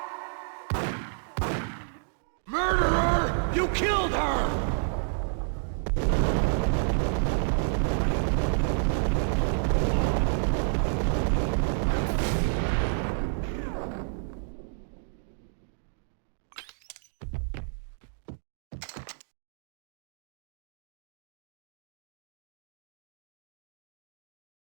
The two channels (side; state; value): left; silent; digital silence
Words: Murderer! You killed her!